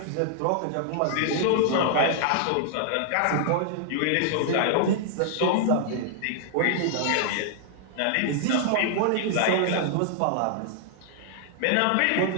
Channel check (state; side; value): different; both; correlation -0.01